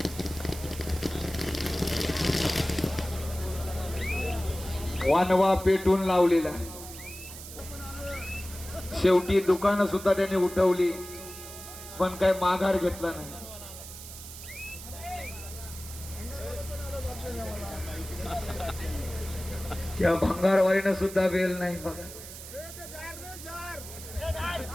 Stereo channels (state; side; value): noise; right; hiss, 13 dB below the sound